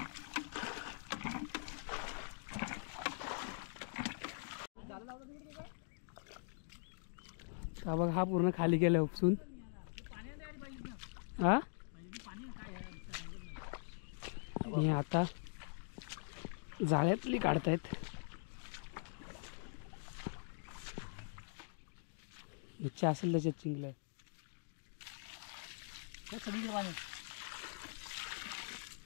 हा बघ हा पूर्ण खाली गेला उपसून. हा आणि आता जाळ्यातली काढतायत. मच्छी असेल त्याच्यात चिंगलं. सगळीकडे पाणी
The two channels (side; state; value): right; silent; digital silence